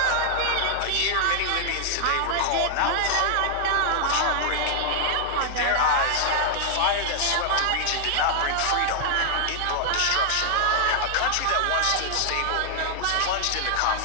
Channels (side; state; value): both; different; correlation 0.00